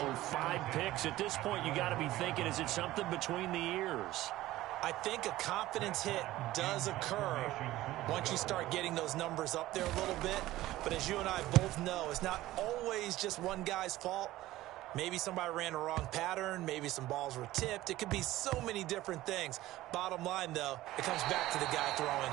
5 picks. At this point, you got to be thinking, is it something between the ears? I think a confidence hit does occur once you start getting those numbers up there a little bit. But as you and I both know, it's not always just one guy's fault. Maybe somebody ran a wrong pattern. Maybe some balls were tipped. It could be so many different things. Bottom line, though, it comes back to the guy throwing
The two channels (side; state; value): left; quieter; 16.2 dB